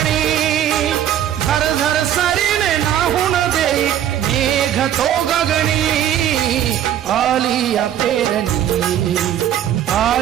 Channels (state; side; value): quieter; left; 10.9 dB